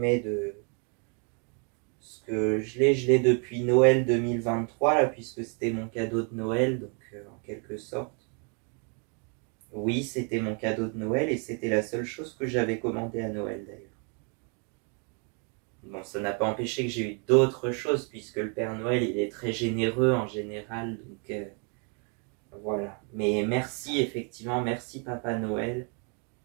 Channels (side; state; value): left; quieter; 38.4 dB